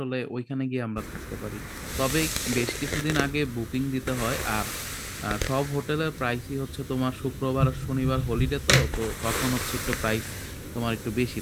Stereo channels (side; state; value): both; identical; correlation 1.00